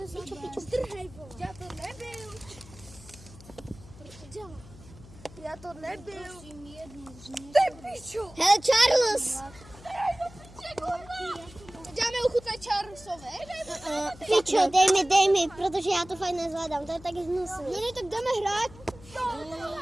Já to nebyl. Hele, Charles. Dáme ochutnat Charlesovi. Pičo, dej mi, protože já to fakt nezvládám, to je tak hnusný. No ne, tak jdeme hrát.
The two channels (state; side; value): noise; left; hum, 20 dB below the sound